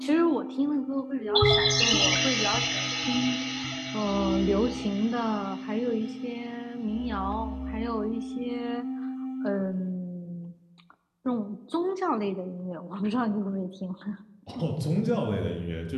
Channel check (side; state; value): both; identical; correlation 1.00